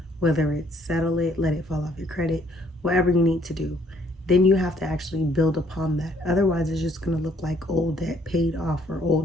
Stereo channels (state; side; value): normal; both; correlation 0.65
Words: whether it's settle it, let it fall off your credit, whatever you need to do. Then you have to actually build upon that. Otherwise, it's just going to look like old debt paid off or